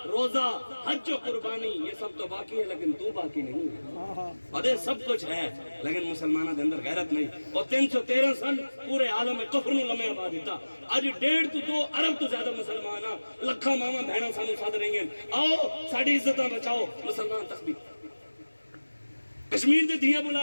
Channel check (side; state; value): both; inverted; correlation -1.00